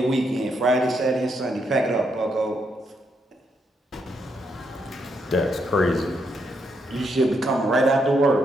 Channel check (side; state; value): both; normal; correlation 0.78